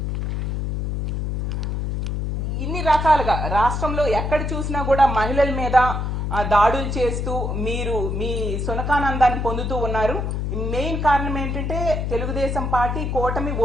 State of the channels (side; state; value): left; noise; hum, 1 dB below the sound